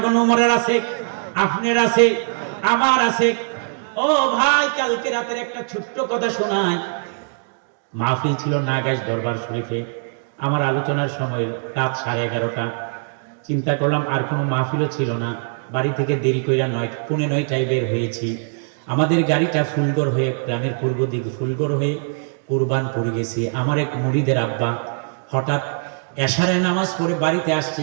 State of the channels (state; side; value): silent; left; digital silence